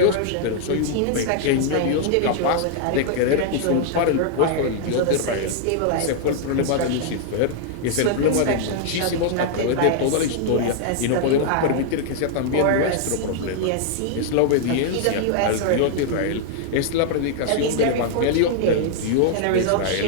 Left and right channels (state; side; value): different; both; correlation 0.00